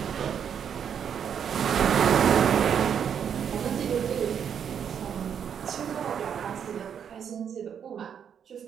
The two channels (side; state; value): left; quieter; 8.1 dB